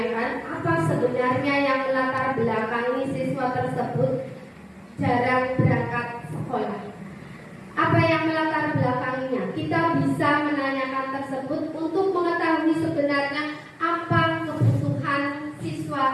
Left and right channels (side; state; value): both; identical; correlation 1.00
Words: apa sebenarnya yang melatar belakangi siswa tersebut jarang berangkat sekolah. Apa yang melatar belakanginya? Kita bisa menanyakan tersebut untuk mengetahui sebenarnya apa kebutuhan